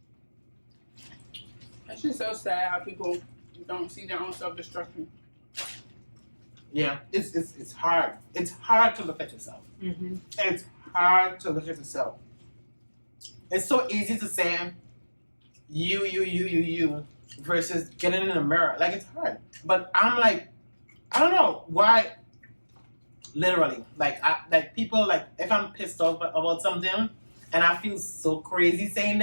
It's just so sad how people don't see their own self-destruction. Yeah, it's hard. It's hard to look at yourself. Mm-hmm. It's hard to look at yourself. It's so easy to say you versus getting in the mirror. Like, it's hard. But I'm like, I don't know why. Literally, people, like, if I'm pissed off about something and I feel so crazy saying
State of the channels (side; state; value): both; inverted; correlation -1.00